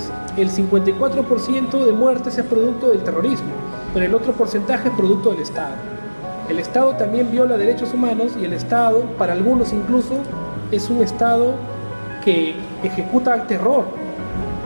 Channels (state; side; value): inverted; both; correlation -1.00